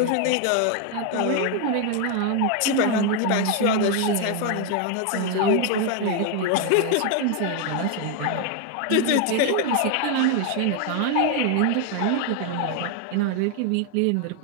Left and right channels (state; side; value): different; both; correlation 0.01